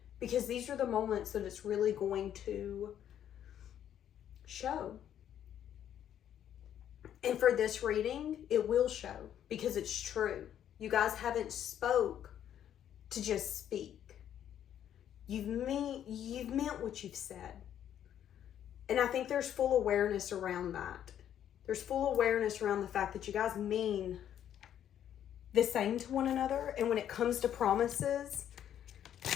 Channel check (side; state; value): right; quieter; 10.2 dB